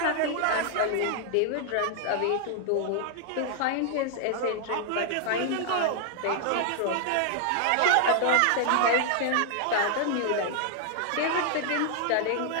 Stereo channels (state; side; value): different; both; correlation 0.00